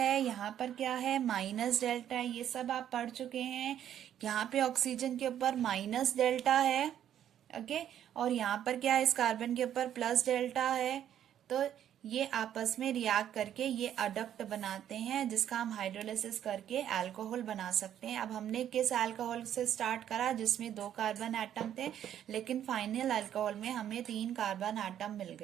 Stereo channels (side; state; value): left; quieter; 10.4 dB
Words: यहाँ पर क्या है माइनस डेल्टा है, ये सब आप पढ़ चुके हैं। यहाँ पे ऑक्सीजन के ऊपर माइनस डेल्टा है। ओके और यहाँ पर क्या है, इस कार्बन के ऊपर प्लस डेल्टा है। तो ये आपस में रिएक्ट करके ये अडक्ट बनाते हैं, जिसका हम हाइड्रोलिसिस करके अल्कोहल बना सकते हैं। अब हमने किस अल्कोहल से स्टार्ट करा, जिसमें 2 कार्बन एटम थे, लेकिन फाइनल अल्कोहल में हमें 3 कार्बन एटम मिल